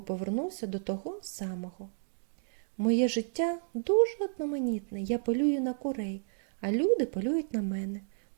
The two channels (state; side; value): silent; left; digital silence